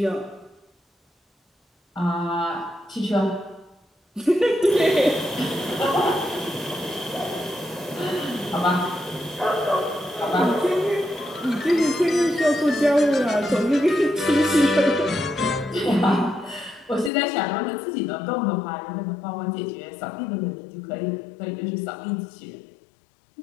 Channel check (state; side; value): drops out; right; at 17.1 s